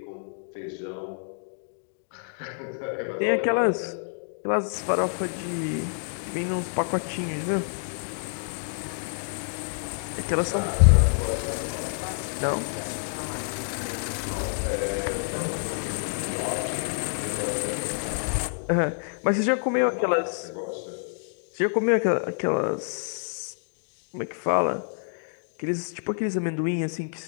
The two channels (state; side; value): silent; right; digital silence